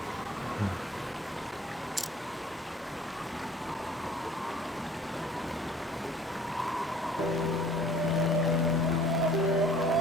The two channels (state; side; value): normal; both; correlation 0.52